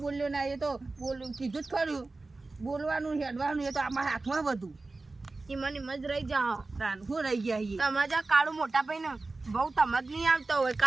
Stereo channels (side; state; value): left; quieter; 3.4 dB